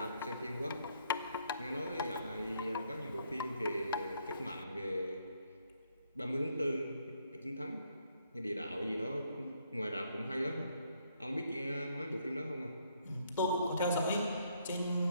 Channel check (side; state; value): both; inverted; correlation -0.71